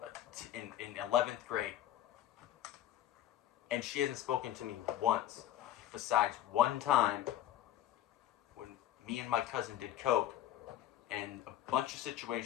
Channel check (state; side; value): quieter; right; 12.4 dB